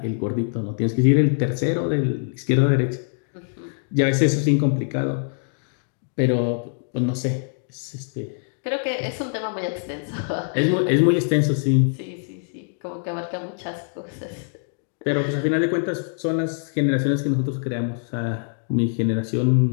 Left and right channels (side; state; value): right; silent; digital silence